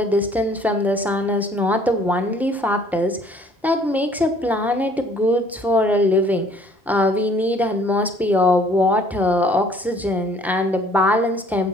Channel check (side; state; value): both; normal; correlation 0.58